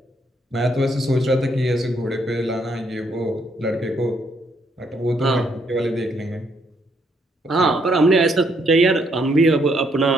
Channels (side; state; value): both; normal; correlation 0.72